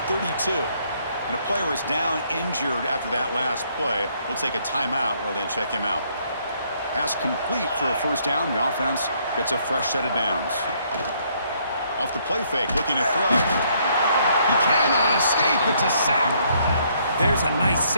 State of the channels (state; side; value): inverted; both; correlation -0.68